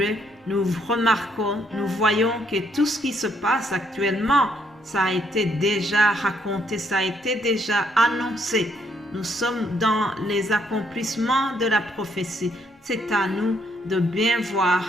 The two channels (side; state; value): both; normal; correlation 0.71